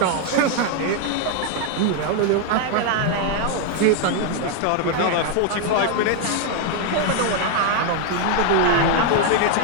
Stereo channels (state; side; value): different; both; correlation 0.00